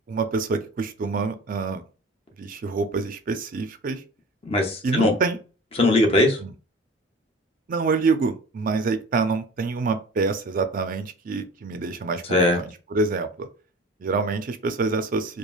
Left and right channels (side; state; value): both; normal; correlation 0.40